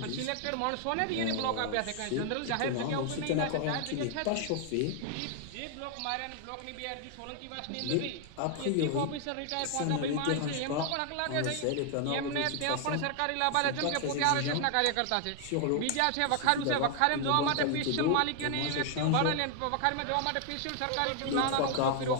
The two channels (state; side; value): different; both; correlation 0.00